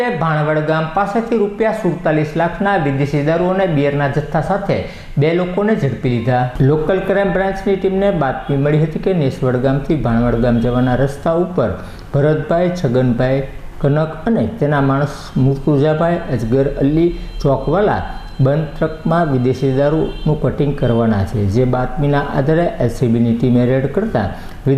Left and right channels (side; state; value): both; identical; correlation 1.00